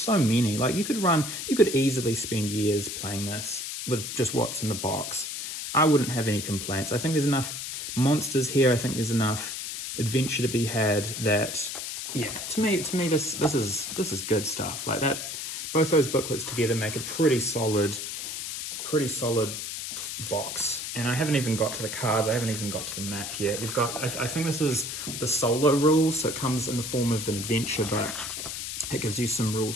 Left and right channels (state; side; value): noise; left; hiss, 6 dB below the sound